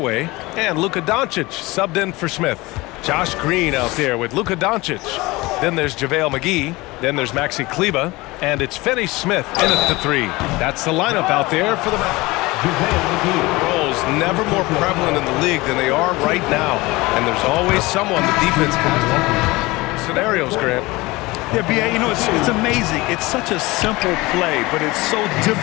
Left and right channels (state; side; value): quieter; right; 21.7 dB